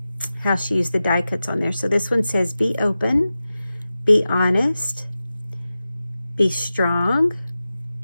how she used the die cuts on there. So this one says, be open, be honest, be strong,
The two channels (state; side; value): inverted; both; correlation -0.94